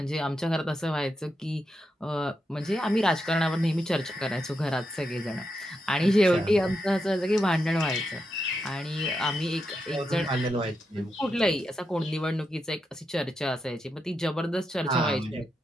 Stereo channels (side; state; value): both; normal; correlation 0.85